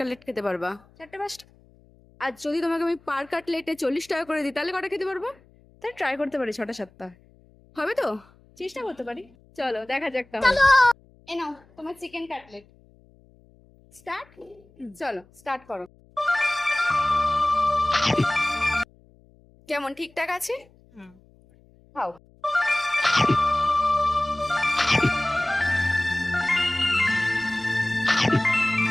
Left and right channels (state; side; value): noise; left; hum, 29 dB below the sound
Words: খেতে পারবা? 4-5টা। আর যদি তোমাকে আমি পার কাটলেটে 40 টাকা করে দিই, তাহলে কটা খেতে পারবো? তাই ট্রাই করতে পারি 6টা-7টা। হবে তো? চেষ্টা করতে পারি। চলো দেখা যাক তাহলে। এ নাও তোমার চিকেন কাটলেট। স্টার্ট। চলো স্টার্ট করো। কেমন ঠিকঠাক আছে? খাও।